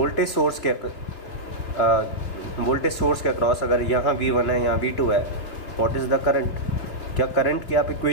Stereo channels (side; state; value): right; late; 2.7 ms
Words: सोर्स के अक्रॉस अगर यहाँ V1 है, यहाँ V2 है, व्हाट इज़ द करंट, क्या करंट की आप